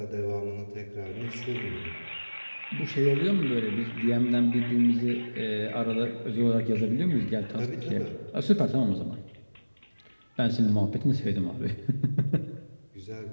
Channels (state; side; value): inverted; both; correlation -1.00